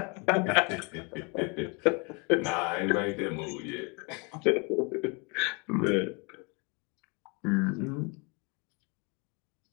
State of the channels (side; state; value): right; quieter; 31.3 dB